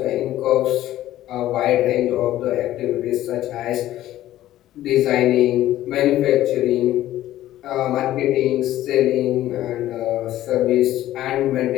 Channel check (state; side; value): quieter; right; 13.9 dB